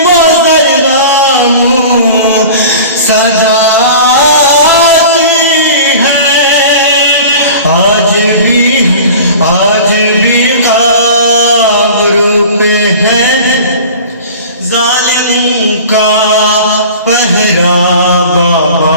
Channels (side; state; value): both; inverted; correlation -0.39